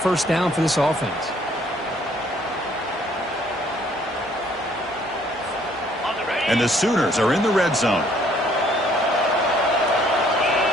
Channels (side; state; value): both; normal; correlation 0.62